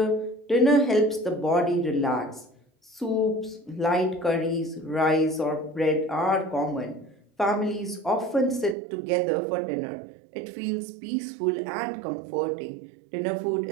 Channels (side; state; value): left; drops out; at 8.8 s